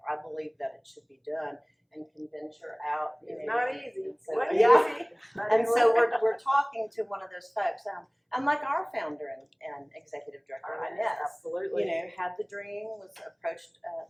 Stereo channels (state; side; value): identical; both; correlation 1.00